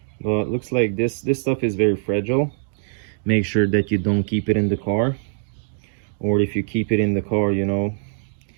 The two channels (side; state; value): left; silent; digital silence